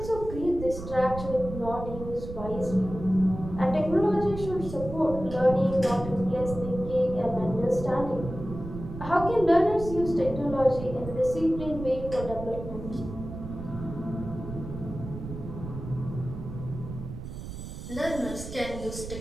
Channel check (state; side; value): noise; right; rumble, 10 dB below the sound